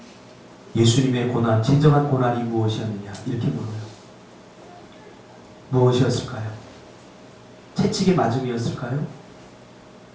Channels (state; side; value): identical; both; correlation 1.00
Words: 예수님의 고난, 진정한 고난이 무엇이었느냐 이렇게 물어요. 무엇이었을까요? 채찍의 맞음이었을까요?